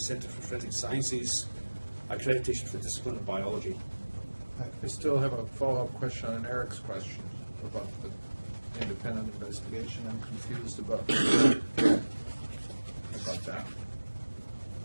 for Forensic Sciences accreditation for the discipline of biology. I still have a follow-up question on Eric's question about the independent investigation. I'm confused about that.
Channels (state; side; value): inverted; both; correlation -1.00